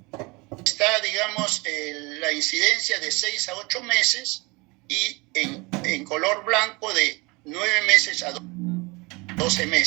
está, digamos, la incidencia de 6 a 8 meses y en color blanco de 9 meses a 12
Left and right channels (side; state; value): left; quieter; 26.1 dB